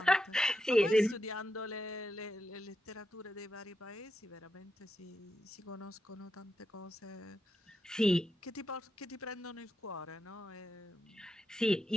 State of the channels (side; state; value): both; normal; correlation 0.86